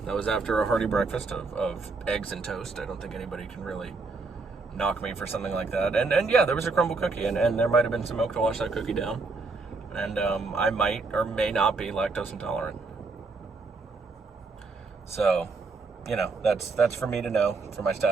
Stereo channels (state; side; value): quieter; left; 4.0 dB